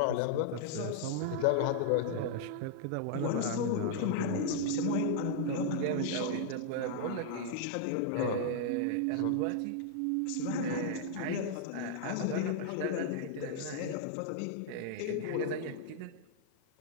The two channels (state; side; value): different; both; correlation -0.01